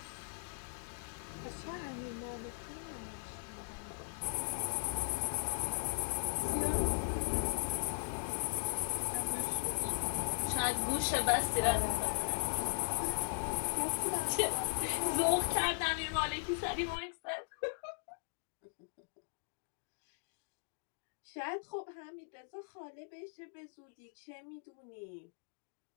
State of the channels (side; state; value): right; silent; digital silence